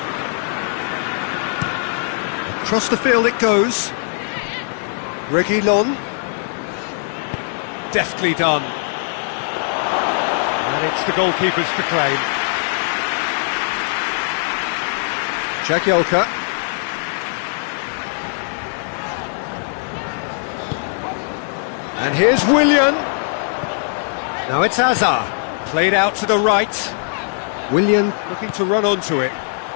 Across the field it goes. Reguilon. Deftly done. And it's the goalkeepers to claim. Jagielka. And here's Willian. Now it's Hazard. Played out to the right. Willian looking to run onto it.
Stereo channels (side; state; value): right; silent; digital silence